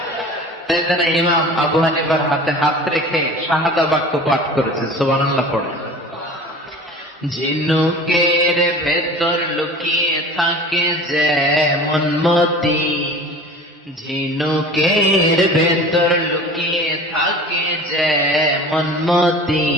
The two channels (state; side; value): normal; both; correlation 0.39